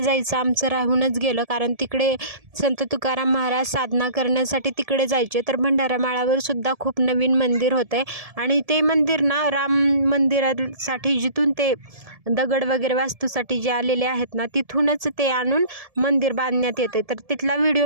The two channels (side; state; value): left; late; 1.7 ms